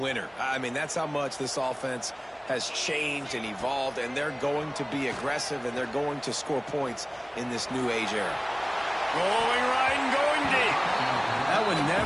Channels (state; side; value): identical; both; correlation 1.00